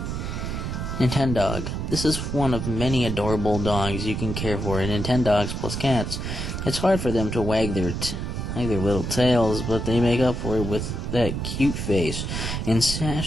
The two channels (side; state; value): right; noise; rumble, 4 dB below the sound